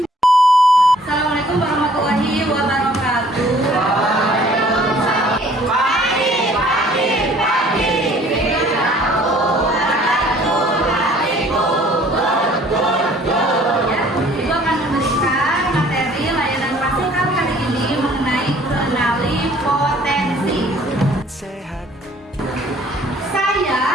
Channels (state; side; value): normal; both; correlation 0.56